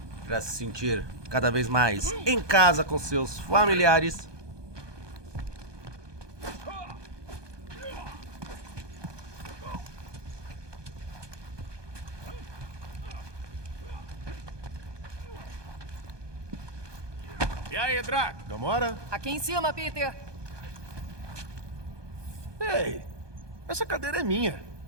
para se sentir cada vez mais em casa com seus familiares. E aí, Drax? Gamora? Aqui em cima, Peter. Ei, essa cadeira é minha.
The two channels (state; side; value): late; left; 1.2 ms